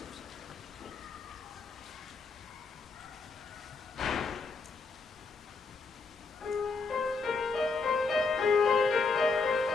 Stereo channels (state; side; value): quieter; right; 4.2 dB